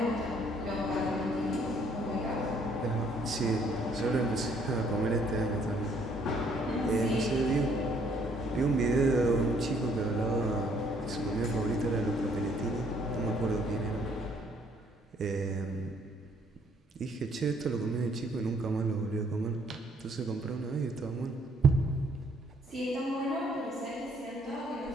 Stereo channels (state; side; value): normal; both; correlation 0.65